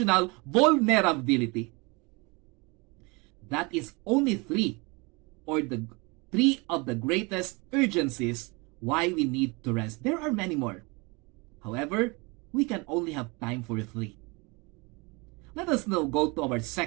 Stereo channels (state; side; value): quieter; left; 27.7 dB